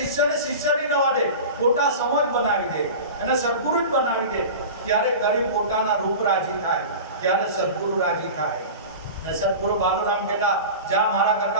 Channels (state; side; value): inverted; both; correlation -0.32